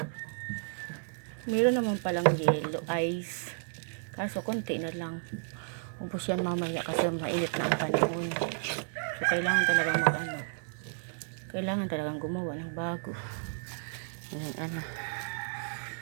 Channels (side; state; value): left; silent; 56 dB below the other